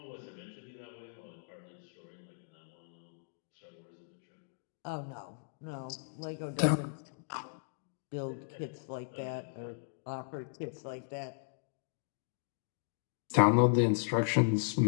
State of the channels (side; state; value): right; silent; digital silence